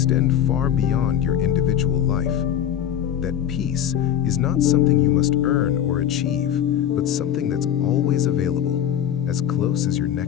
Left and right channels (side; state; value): right; quieter; 9.9 dB